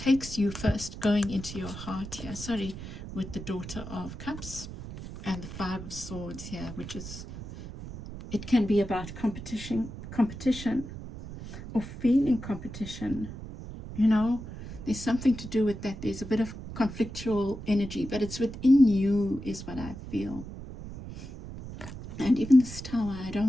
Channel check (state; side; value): noise; right; rumble, 11 dB below the sound